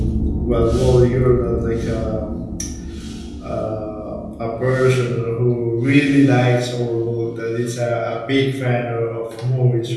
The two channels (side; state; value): both; identical; correlation 1.00